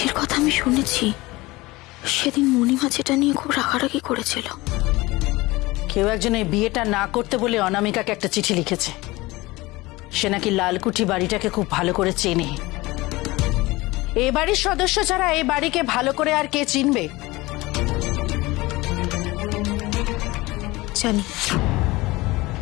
কথা আমি শুনেছি, সেদিন মণিমা যেটা নিয়ে খুব রাগারাগি করেছিল। কেউ একজন এই বিয়েটা না করতে বলে অনামিকাকে একটা চিঠি লিখেছে। সে নাকি লালকুঠি বাড়িটাকে খুব ভালো করে চেনে। এ বাড়ির সদস্য ছাড়া এই বাড়িকে ভালো করে আর কে চিনবে? জানি।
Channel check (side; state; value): right; quieter; 21.0 dB